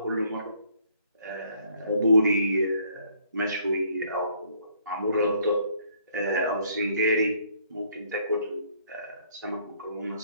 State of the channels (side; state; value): both; inverted; correlation -0.64